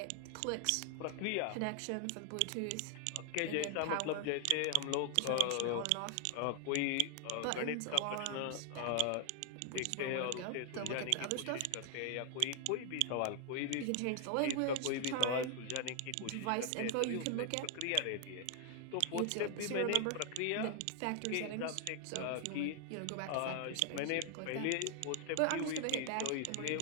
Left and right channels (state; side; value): different; both; correlation 0.00